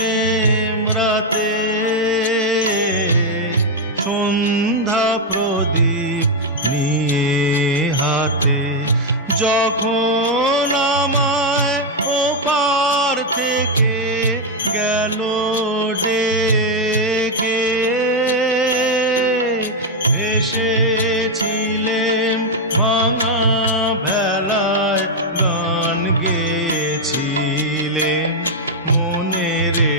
রাতে, সন্ধ্যা প্রদীপ নিয়ে হাতে, যখন আমায় ওপার থেকে গেল ডেকে, এসেছিলেম ভাঙা ভেলায়, গান গেয়েছিলেম মনে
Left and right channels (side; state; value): both; normal; correlation 0.01